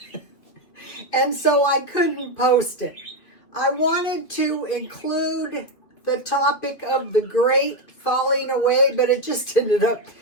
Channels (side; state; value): right; late; 2.9 ms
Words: and so I couldn't post it. I wanted to include the topic of the great falling away, but it just ended up